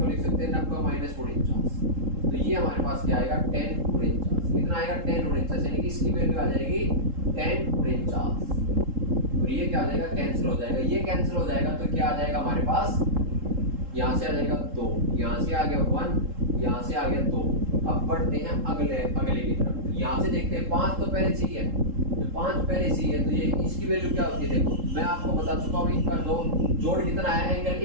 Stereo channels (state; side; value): late; left; 3.7 ms